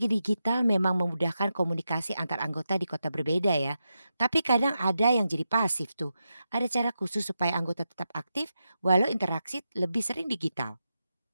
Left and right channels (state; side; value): inverted; both; correlation -0.88